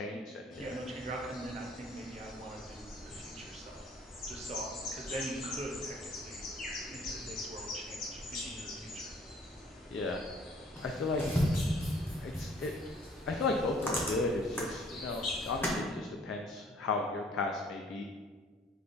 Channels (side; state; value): both; normal; correlation 0.57